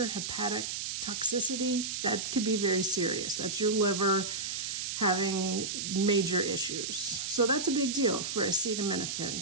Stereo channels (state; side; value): noise; right; hiss, 3 dB below the sound